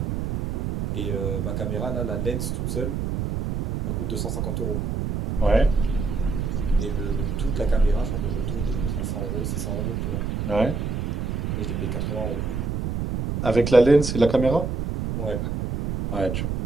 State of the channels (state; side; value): noise; right; rumble, 1 dB below the sound